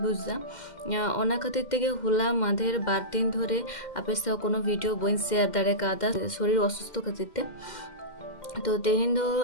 ओना खातिर तेगे होला माधेर 12 दिन धरे आपे साथ कोनो वीडियो बन शेयर दाड़े कादा शरीर असुस्थ खातिर ते तो तेहेन दो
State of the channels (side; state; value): right; late; 2.1 ms